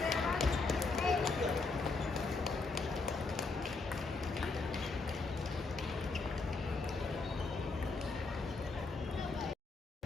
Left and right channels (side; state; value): right; quieter; 3.9 dB